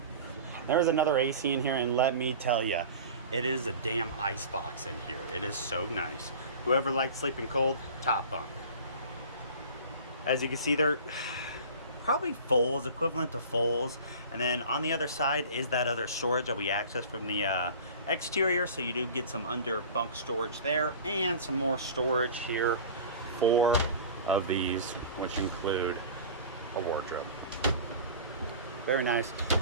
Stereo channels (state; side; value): inverted; both; correlation -0.39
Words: There's another AC in here, and let me tell you, it is a damn ice box in here. It is so nice. Whoever likes sleeping cold, top bunk. As you can see, they're probably fulls, equivalent to fulls. And then on the other side is that other storage that we accessed from the exterior. So you do get some under bunk storage there and some more storage here. 4 of these, which include a wardrobe. Very nice.